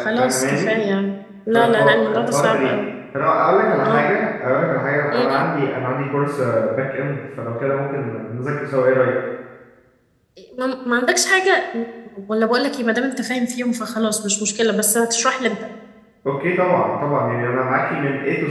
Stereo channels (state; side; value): identical; both; correlation 1.00